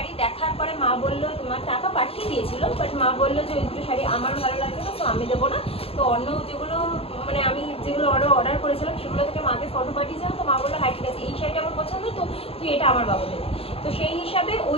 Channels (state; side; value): late; right; 0.28 ms